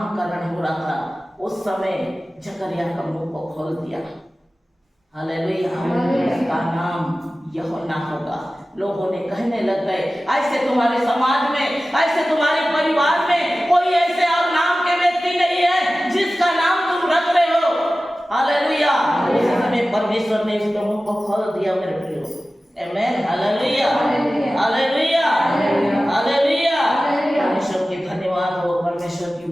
हो रहा था उस समय जकरिया का मुंह को खोल दिया। हालेलुया। उसका नाम यूहन्ना होगा। लोगों ने कहने लग गए ऐसे तुम्हारे समाज में, ऐसे तुम्हारे परिवार में कोई ऐसे और नाम के व्यक्ति नहीं है जिसका नाम तुम रख रहे हो। हालेलुया। उस समय परमेश्वर ने उसके मुंह को खोल दिया मेरे प्रियो, आमीन, हालेलुया, हालेलुया, हालेलुया। परमेश्वर की धन्यवाद हो, परमेश्वर की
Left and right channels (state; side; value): normal; both; correlation 0.96